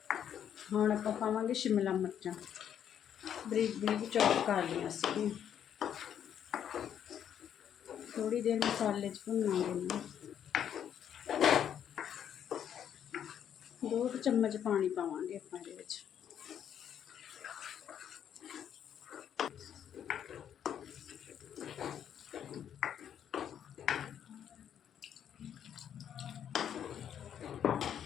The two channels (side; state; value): right; quieter; 9.3 dB